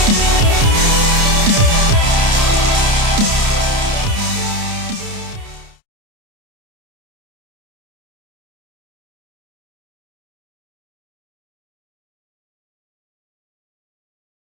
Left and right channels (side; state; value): left; late; 29 ms